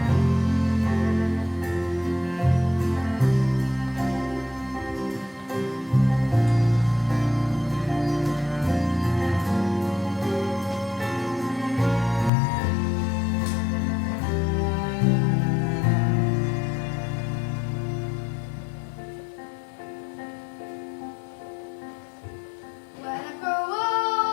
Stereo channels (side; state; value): right; drops out; at 12.3 s